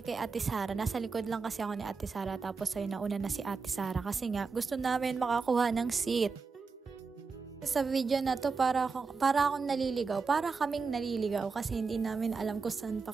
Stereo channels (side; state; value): left; quieter; 4.7 dB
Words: kay Ate Sara. Nasa likod lang kasi ako ni Ate Sara tapos ay nauna na si Ate Sara kasi nga gusto namin makakuha ng seat. Sa video na to para akong naliligaw, para kaming naliligaw kasi hindi namin alam kung saan pa